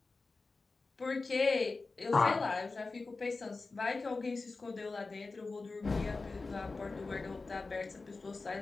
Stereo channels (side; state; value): right; quieter; 3.8 dB